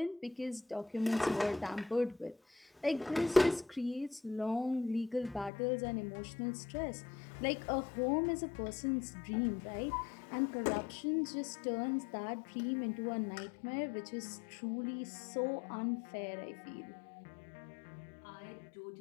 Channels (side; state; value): right; drops out; at 5.5 s